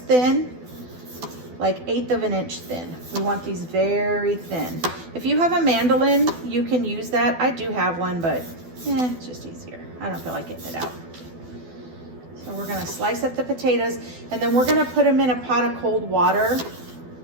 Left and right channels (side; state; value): left; late; 12 ms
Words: like 1/8 of an inch thin. We want these very thin. If you have a mandolin, you can use that. I do have one, but it's just easier. I don't feel like getting it out. So we're gonna slice up the potatoes, and then we're gonna put them in a pot of cold water.